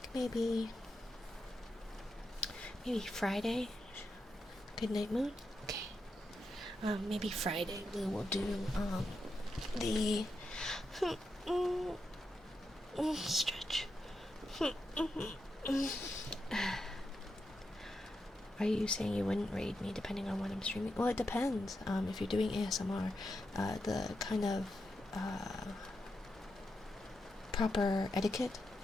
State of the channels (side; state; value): both; normal; correlation 0.86